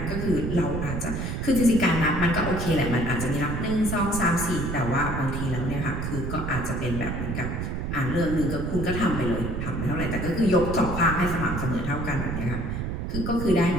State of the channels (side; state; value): right; noise; rumble, 3 dB below the sound